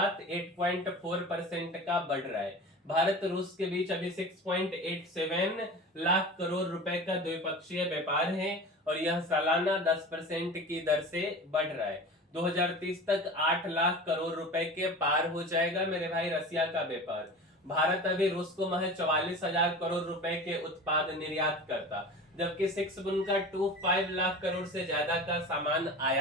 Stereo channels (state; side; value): normal; both; correlation 0.35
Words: 8.4% का बढ़ रहा है। भारत रूस के बीच अभी 6.87 लाख करोड़ रुपए का द्विपक्षीय व्यापार है और यह सालाना 10% की दर से बढ़ रहा है। 2030 तक 8 लाख करोड़ रुपए के पार हो जाएगा मेरे भाई रसिया का व्यापार। भारत अभी रूस को महज 44,000 करोड़ रुपए के उत्पाद निर्यात करता, जबकि 6.25 लाख करोड़ से ज्यादा का सामान